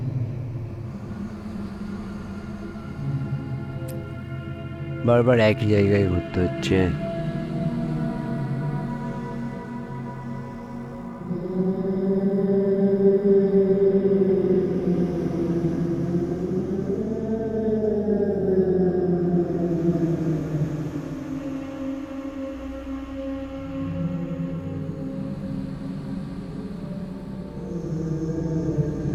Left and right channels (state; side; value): identical; both; correlation 1.00